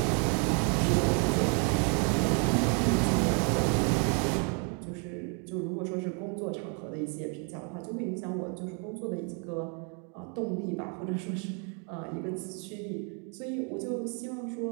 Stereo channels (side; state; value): left; quieter; 38.0 dB